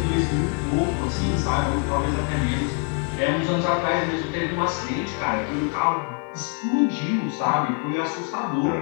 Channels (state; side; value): quieter; right; 38.1 dB